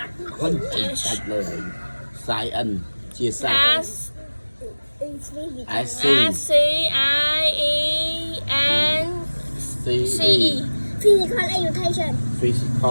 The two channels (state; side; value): inverted; both; correlation -1.00